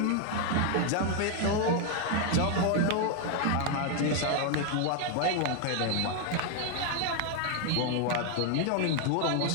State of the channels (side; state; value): both; different; correlation 0.01